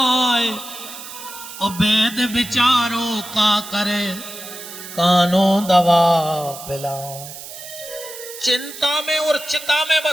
और वेद विचारो का करे कानो दवा पिलाए। चिंता में और चिता में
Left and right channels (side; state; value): right; noise; hiss, 13 dB below the sound